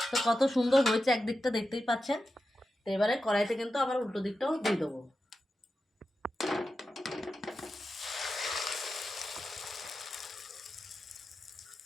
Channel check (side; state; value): both; normal; correlation 0.91